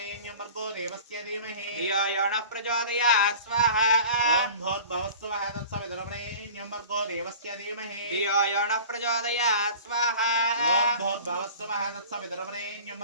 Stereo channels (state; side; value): inverted; both; correlation -0.41